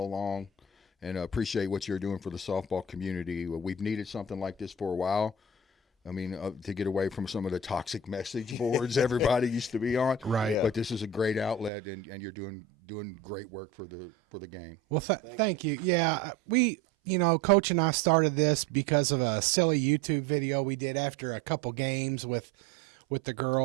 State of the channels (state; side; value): drops out; left; at 11.7 s